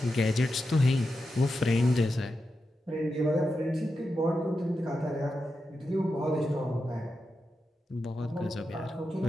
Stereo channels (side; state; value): both; normal; correlation 0.89